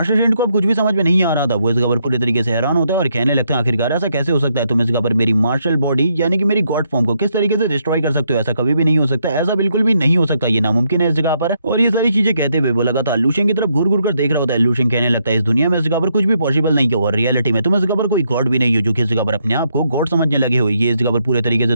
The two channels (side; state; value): both; inverted; correlation -0.76